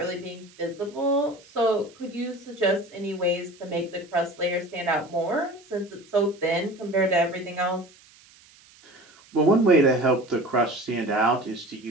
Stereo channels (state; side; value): noise; right; hiss, 26 dB below the sound